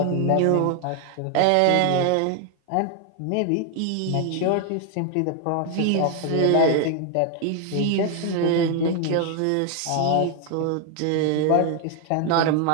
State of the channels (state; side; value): different; both; correlation 0.00